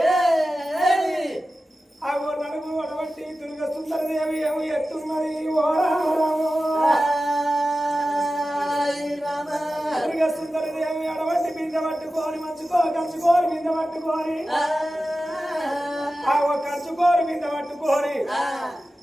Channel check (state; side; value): normal; both; correlation 0.94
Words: ఆ నడుగు అడవట్టి దుర్గ సుందరదేవి ఏమి ఎత్తున్నది దుర్గ సుందరదేవి అడవట్టి బిందె పట్టుకొని కంచుకోరు బిందె పట్టుకొని కంచుకోరు బిందె పట్టుకొని